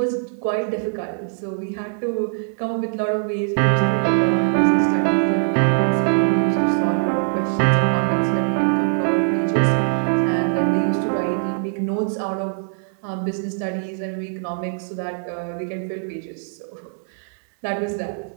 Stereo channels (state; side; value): silent; left; 63 dB below the other